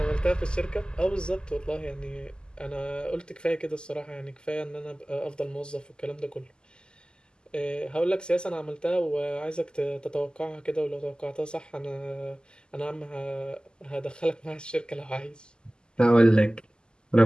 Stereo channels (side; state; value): right; late; 0.047 ms